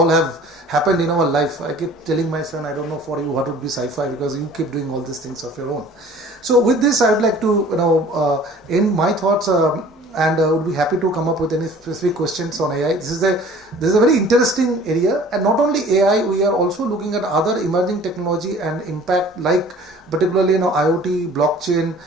have happened in our life. I keep telling my son, I don't know for you what would be sci-fi, because you keep doing all these things of your own. So with this, I would like to end my thoughts, and would be happy to come up with any specific questions on AI. This is a very interesting area, and not only AI, we are also looking at other emerging technology and impact, like particularly IoT, blockchain,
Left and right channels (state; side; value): normal; both; correlation 0.49